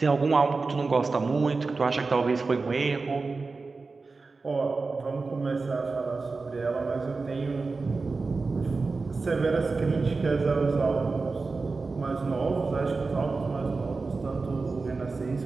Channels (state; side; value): quieter; left; 4.0 dB